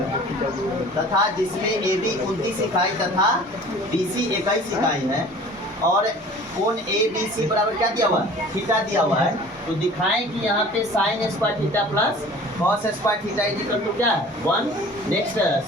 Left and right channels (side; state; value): both; normal; correlation 0.45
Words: तथा जिसमें ए बी 29 इकाई तथा बी सी 21 इकाई है और कोण ए बी सी बराबर क्या दिया हुआ है, थीटा दिया हुआ है। तो दिखाएं कि यहाँ पे sine square theta plus cos square theta equal to क्या है 1। नेक्स्ट